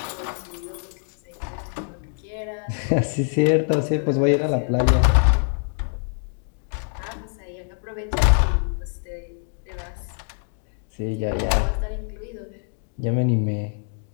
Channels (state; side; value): silent; right; 56 dB below the other